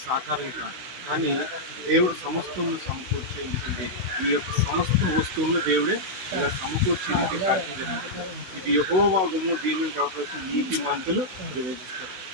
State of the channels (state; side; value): late; left; 16 ms